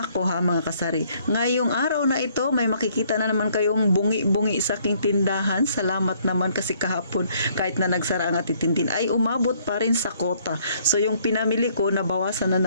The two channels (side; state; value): both; inverted; correlation -0.65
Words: ako ha mga kasari. Ngayong araw na ito, may makikita na naman kayong bungi-bungi sa aking tindahan. Salamat naman kasi kahapon, kahit na nagsara ang Ate Tintin, ay umabot pa rin sa kota. So, yung pinamili ko, nabawasan na